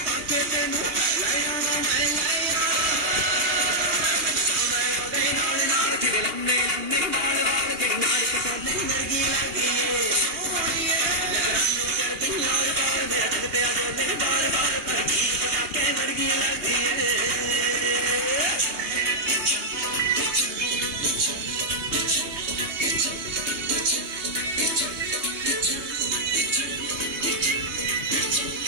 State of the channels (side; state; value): left; late; 2.8 ms